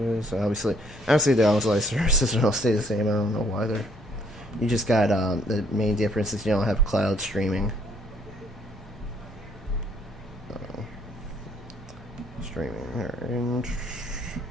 Obviously the online services don't stay the same. I don't know why they're. You just got the main difference is you don't have cloud streaming. Streaming. Alright.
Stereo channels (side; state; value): both; normal; correlation 0.66